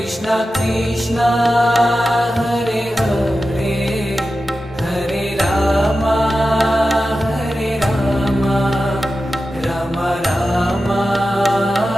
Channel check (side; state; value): both; normal; correlation 0.92